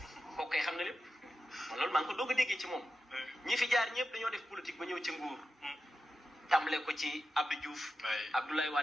kooku kay xam na lépp man loolu maa ngi ko doog a déggee ci moom ñi fi jaar ñëpp dañoo def politique ba ñëw ci nguur tàmbale ko ci Abdou Diouf Abdoulaye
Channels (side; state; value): both; normal; correlation 0.91